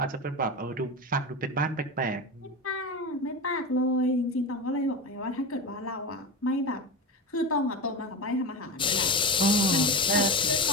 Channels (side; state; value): both; normal; correlation 0.22